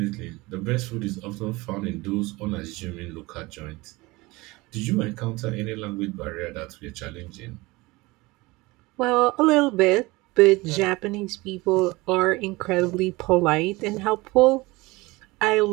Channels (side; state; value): left; quieter; 22.2 dB